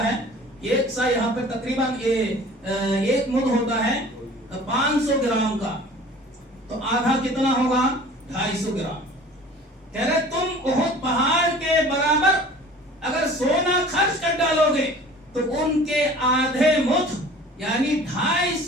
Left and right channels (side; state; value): both; normal; correlation 0.46